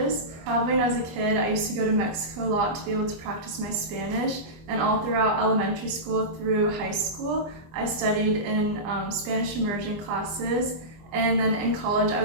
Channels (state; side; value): late; left; 25 ms